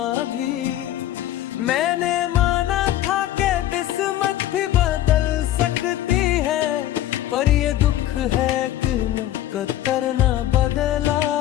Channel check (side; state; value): right; quieter; 13.1 dB